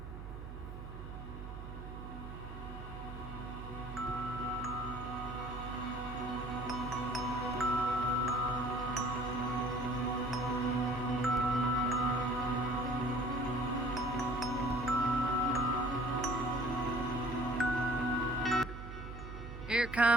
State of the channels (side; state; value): right; noise; hum, 9 dB below the sound